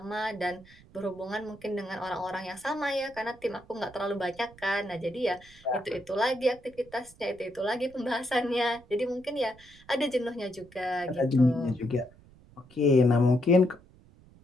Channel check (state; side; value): noise; right; rumble, 25 dB below the sound